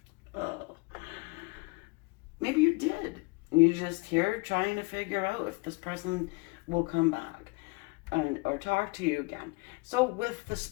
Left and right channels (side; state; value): right; quieter; 27.5 dB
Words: Oh. Maybe you did. And you're just here trying to figure out if this person will come back or talk to you again. So with the